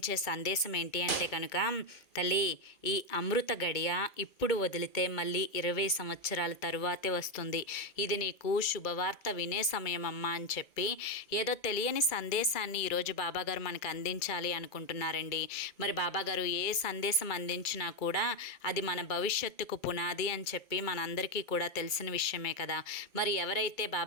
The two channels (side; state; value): right; late; 2.3 ms